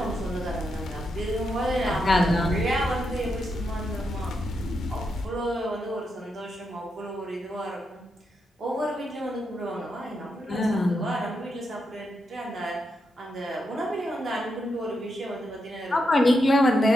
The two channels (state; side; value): normal; both; correlation 0.83